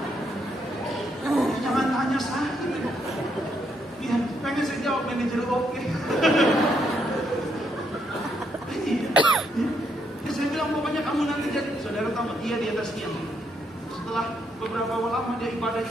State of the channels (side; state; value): both; normal; correlation 0.76